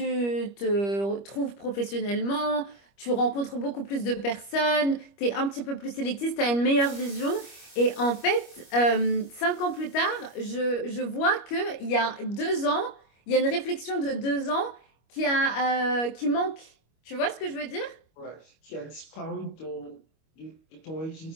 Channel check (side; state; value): right; late; 25 ms